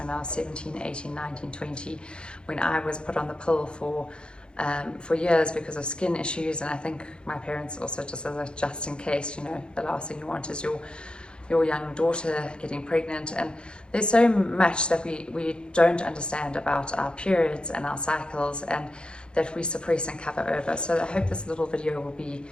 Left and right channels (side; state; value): right; late; 0.052 ms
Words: I was 17, 18, 19, 20, when I was put on the pill for years because of skin issues. And I think my parents also, just in case, you know, the last thing you want is your young daughter getting pregnant. And there's so much that we don't understand about our periods and our cycles, and that we suppress and cover over. So I hope this little video will be